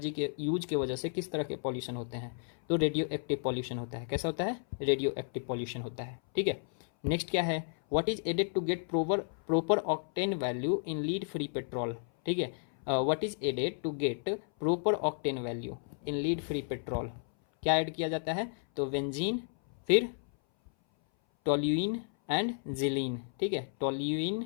के यूज के वजह से किस तरह के पॉल्यूशन होते हैं, तो रेडियो एक्टिव पॉल्यूशन होता है, कैसा होता है, रेडियो एक्टिव पॉल्यूशन होता है, ठीक है। नेक्स्ट क्या है, what is added to get proper octane value in lead free petrol, ठीक है, what is added to get proper octane value in lead free petrol, क्या ऐड किया जाता है, तो बेंजीन, फिर टोल्यूइन एंड जिलीन, ठीक है,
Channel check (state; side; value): silent; right; 56 dB below the other